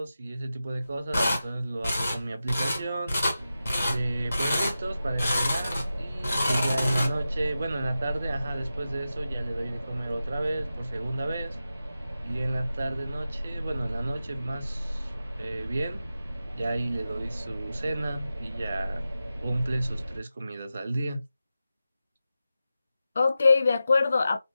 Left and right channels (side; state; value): both; inverted; correlation -0.92